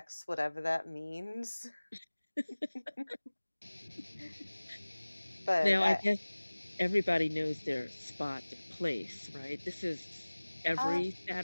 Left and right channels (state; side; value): inverted; both; correlation -1.00